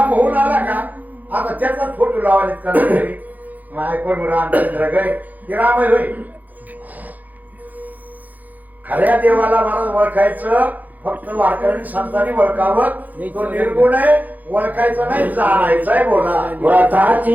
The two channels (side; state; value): left; late; 0.081 ms